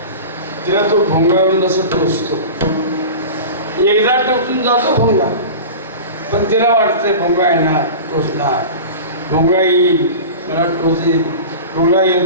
तिला तो भोंगावरून असं टोचतो. एकदा टोचून जातो भोंगा, पण तिला वाटतंय भोंगा येणार, टोचणार, भोंगा येईल मला टोचेल, भोंगा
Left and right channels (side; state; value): both; inverted; correlation -0.33